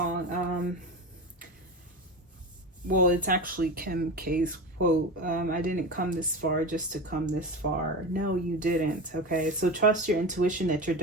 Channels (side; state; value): both; normal; correlation 0.25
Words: Well, it's actually Kim K's quote. I didn't come this far just to come this far. No, you didn't. Okay, so trust your intuition that you're